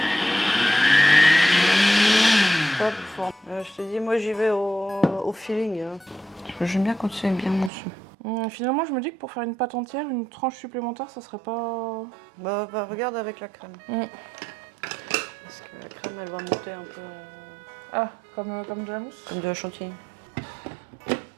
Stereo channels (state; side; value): drops out; left; at 7.7 s